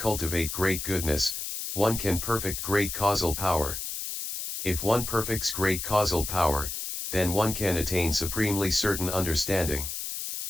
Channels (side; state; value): left; noise; hiss, 5 dB below the sound